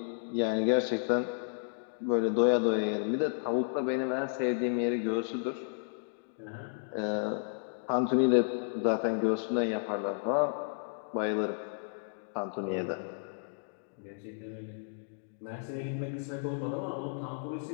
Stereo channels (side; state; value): right; silent; digital silence